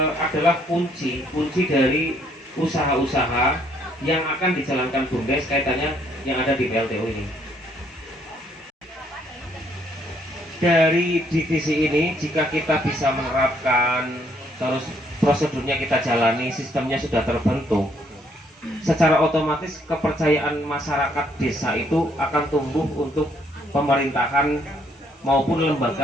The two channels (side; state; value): both; normal; correlation 0.68